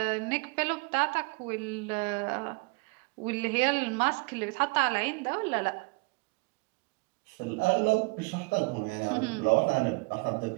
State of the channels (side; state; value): left; quieter; 29.2 dB